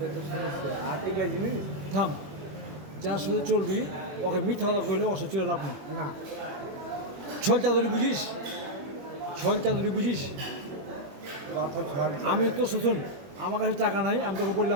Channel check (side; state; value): left; late; 21 ms